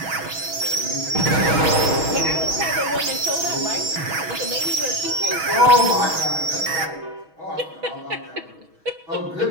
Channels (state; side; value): late; left; 6.2 ms